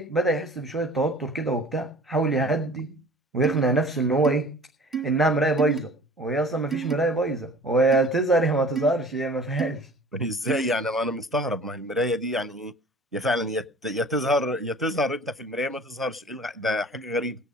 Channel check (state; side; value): normal; both; correlation 0.46